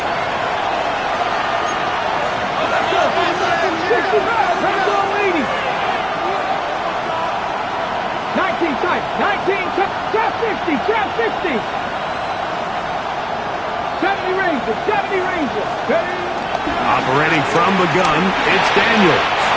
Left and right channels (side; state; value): both; identical; correlation 1.00